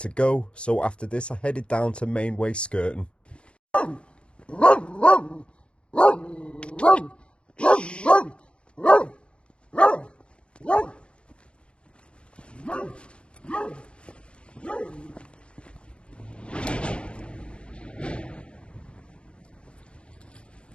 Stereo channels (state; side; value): late; right; 0.057 ms